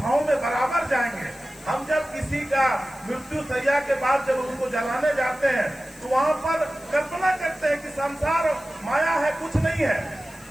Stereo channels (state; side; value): noise; left; hiss, 23 dB below the sound